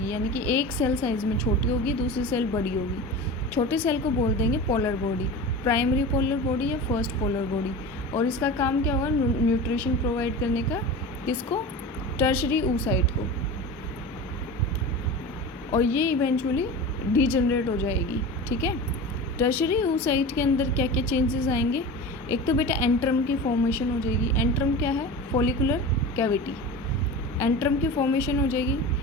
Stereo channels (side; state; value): both; normal; correlation 0.31